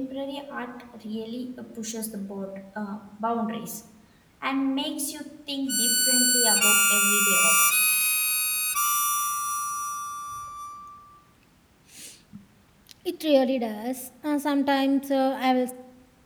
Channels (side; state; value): both; identical; correlation 1.00